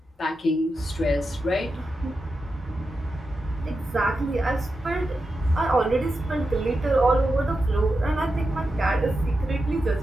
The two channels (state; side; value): normal; both; correlation 0.89